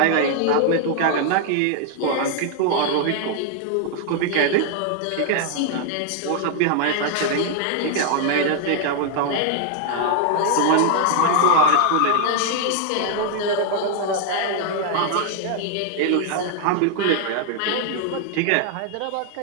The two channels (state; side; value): different; both; correlation 0.00